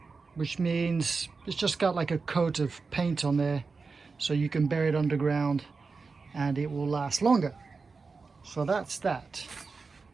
which means it's just got like a coat of paint on there, so you can bury it underground and it will last longer. So that's that.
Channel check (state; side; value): quieter; left; 4.5 dB